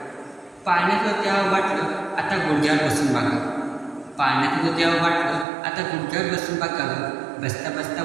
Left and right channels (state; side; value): drops out; left; at 5.5 s